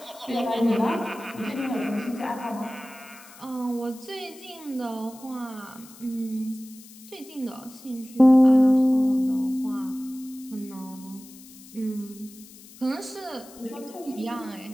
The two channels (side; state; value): left; noise; hiss, 20 dB below the sound